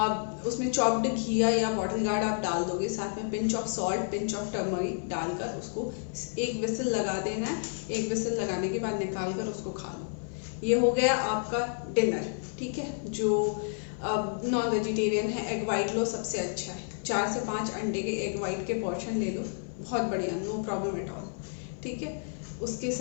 उसमें चॉप्ड घिया या बॉटल गार्ड आप डाल दोगे। साथ में pinch of salt, pinch of turmeric डालकर उसको एक विसल लगा देना है। एक विसल लगाने के बाद निकाल कर उसको खा लो। ये हो गया आपका डिनर। ठीक है, जो नॉन वेजिटेरियन है, एग वाइट लो, सबसे अच्छा है। 4 से 5 अंडे के एग वाइट के पोर्शन ले लो, बहुत बढ़िया, नो प्रॉब्लम एट ऑल। ठीक है, उसके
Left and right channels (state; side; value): silent; right; digital silence